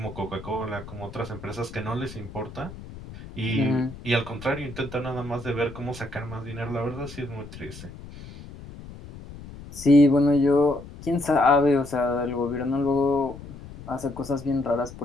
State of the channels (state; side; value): noise; left; rumble, 15 dB below the sound